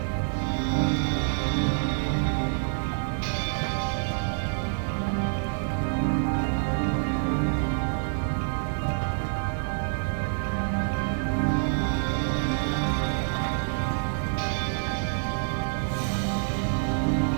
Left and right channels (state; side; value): silent; left; digital silence